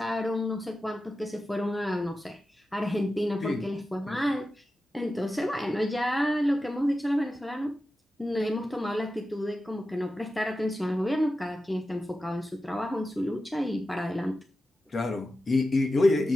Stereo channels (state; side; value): normal; both; correlation 0.92